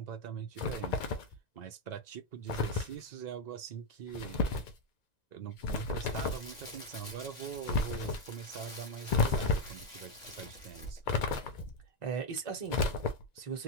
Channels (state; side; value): late; right; 1.9 ms